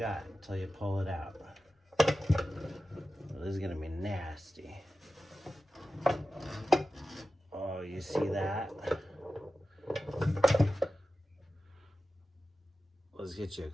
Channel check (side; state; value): both; normal; correlation 0.94